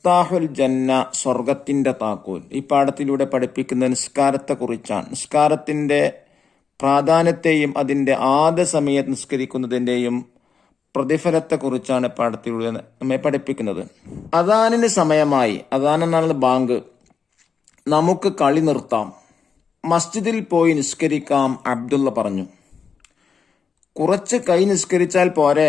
ജന്ന, സ്വർഗത്തിന്റെ താക്കോൽ. ഈ പാഠത്തിലൂടെ പഠിപ്പിക്കുന്ന നിസ്കാരത്തെക്കുറിച്ചാണ്. നിസ്കാരത്തിന്റെ പ്രാധാന്യത്തെയും അതിന്റെ ആദ്യ സമയത്ത് നിസ്കരിക്കുന്നതിന്റെയും പ്രതിഫലത്തെക്കുറിച്ചാണ് പാഠത്തിലൂടെ നമ്മെ പഠിപ്പിക്കുന്നത്. അദാനിന് സമയമായി. അദാൻ എന്നാണ് ബാങ്ക്. നമുക്ക് കളി നിർത്താം, മസ്ജിദിൽ പോയി നിസ്കരിക്കാം, അബ്ദുള്ള പറഞ്ഞു. കുറച്ച് കൈ നിസ്കരിച്ചാൽ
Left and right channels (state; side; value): quieter; right; 6.0 dB